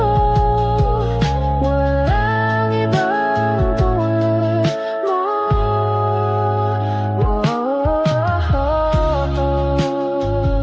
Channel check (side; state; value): both; identical; correlation 1.00